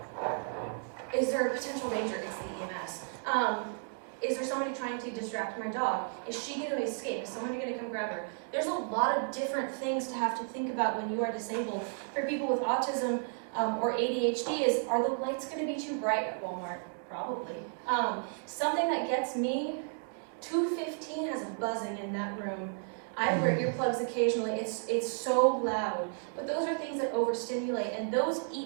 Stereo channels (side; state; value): left; silent; 56 dB below the other